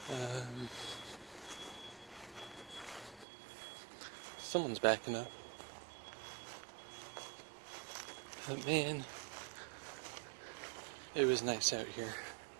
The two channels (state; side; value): drops out; left; at 3.2 s